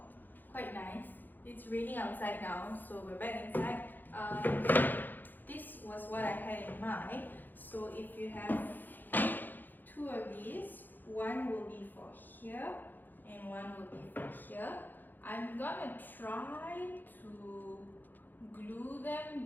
Quite nice. It's raining outside now, so we're back inside. This was what I had in mind. So if you have 2 of these, one will be for here and one will be for here. I'm gonna try to glue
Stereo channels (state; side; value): late; right; 0.088 ms